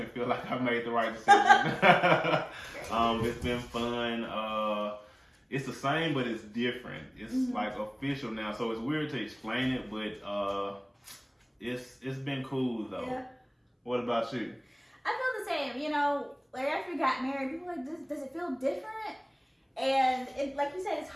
feel like I made the right decision. It's been fun. It's the same, but it's different. It's like official now, so it's weird to explain it, but it's been cool though. Yeah. What about you? I feel the same. Like after we got married, people were like, does it feel different? And like you said, it's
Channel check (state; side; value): identical; both; correlation 1.00